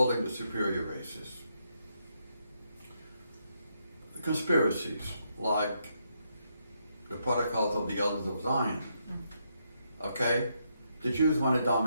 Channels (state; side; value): inverted; both; correlation -0.79